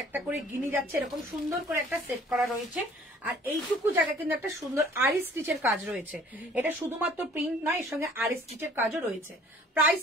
একটা করে গিনি যাচ্ছে, এরকম সুন্দর করে একটা সেট করা রয়েছে। আর এইটুকু জায়গা কিন্তু একটা সুন্দর আরি স্টিচের কাজ রয়েছে। এটা শুধুমাত্র প্রিন্ট নয়, এর সঙ্গে আরি স্টিচের কাজও রয়েছে। প্রাইস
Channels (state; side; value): normal; both; correlation 0.54